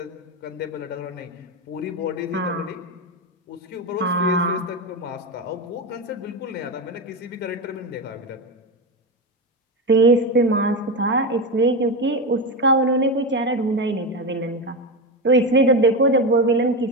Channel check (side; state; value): both; normal; correlation 0.15